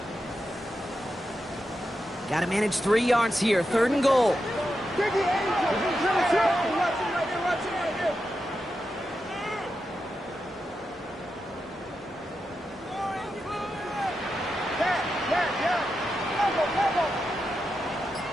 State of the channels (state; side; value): normal; both; correlation 0.88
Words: Got to manage 3 yards here. Third and goal.